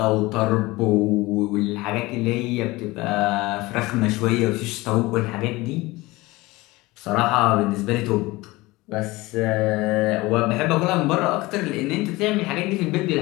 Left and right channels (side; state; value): right; quieter; 20.9 dB